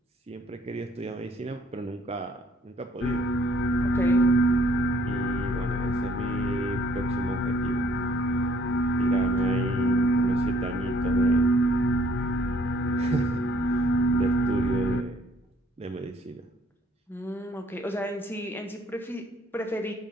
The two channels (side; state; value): both; normal; correlation 0.62